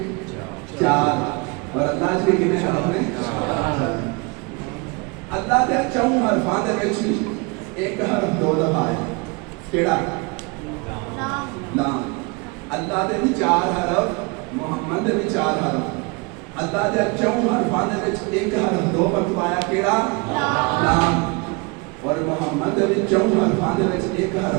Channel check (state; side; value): quieter; left; 29.1 dB